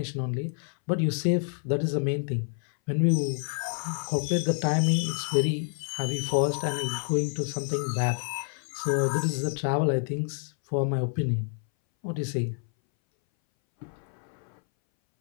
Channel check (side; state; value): right; silent; 59 dB below the other